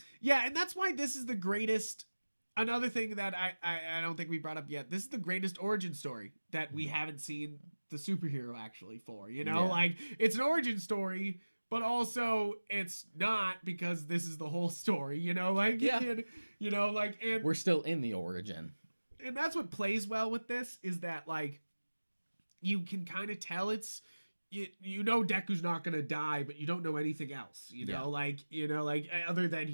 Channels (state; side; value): inverted; both; correlation -1.00